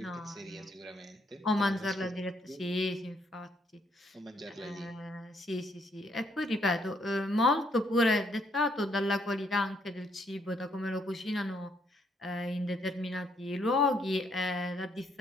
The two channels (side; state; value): both; normal; correlation 0.71